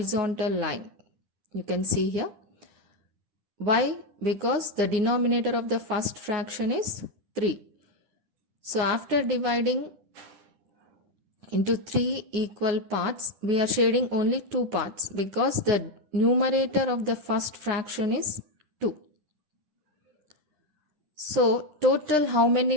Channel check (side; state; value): left; late; 9.9 ms